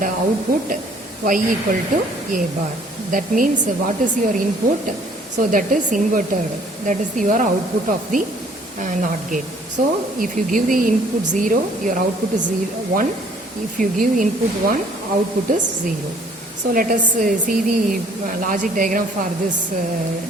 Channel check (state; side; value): normal; both; correlation 0.59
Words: output y equal to a bar. That means what is your input? So that is inverted. That is your output of the NOT gate. So if you give the input 0, your output is 1. If you give input 1, output is 0. So let us see the logic diagram for this